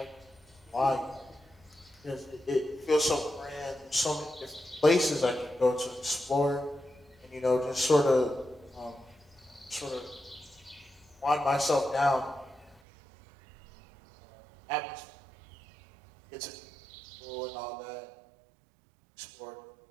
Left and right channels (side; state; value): left; drops out; at 12.8 s